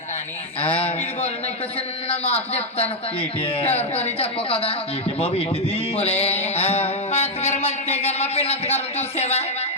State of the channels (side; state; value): both; normal; correlation 0.01